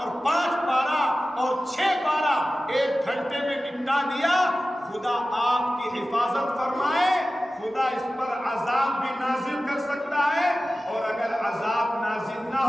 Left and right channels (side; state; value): both; normal; correlation 0.95